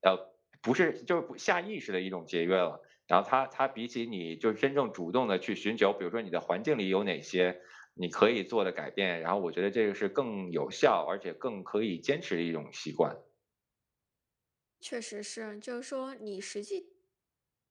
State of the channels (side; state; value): both; identical; correlation 1.00